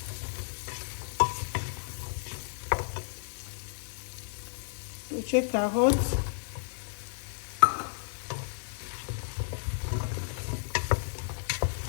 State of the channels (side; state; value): right; silent; digital silence